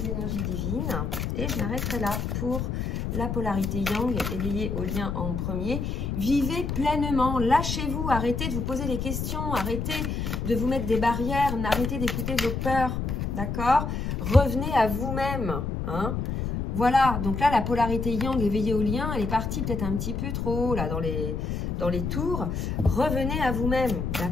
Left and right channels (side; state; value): left; noise; rumble, 2 dB below the sound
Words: énergies divines et je m'arrêterai là pour la polarité yang éveillée au lien en premier. Vivez pleinement, lâchez-vous, arrêtez de vous poser des questions, arrêtez de vous mettre des barrières, arrêtez d'écouter vos peurs, d'accord? Revenez à vous-même, hein? Voilà, donc là la polarité yang éveillée au lien, elle est partie peut-être un petit peu trop haut là dans les tours. Revenez à vous-même,